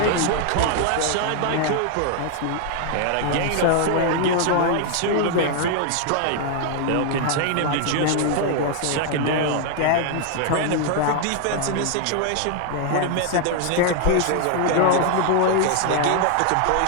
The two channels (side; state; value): both; different; correlation 0.00